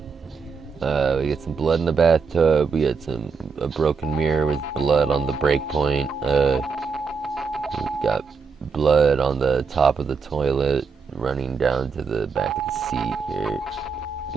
We get some blood in the bathtub. We got a broken mirror with blood on the break point. We got blood on the top of the toilet running down to the back of the seat here.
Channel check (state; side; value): quieter; left; 5.2 dB